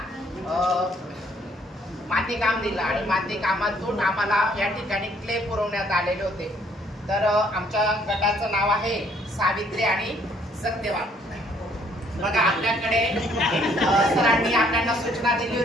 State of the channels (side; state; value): both; normal; correlation 0.64